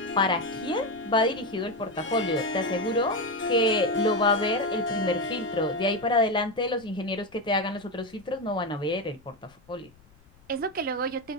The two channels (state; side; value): noise; left; rumble, 29 dB below the sound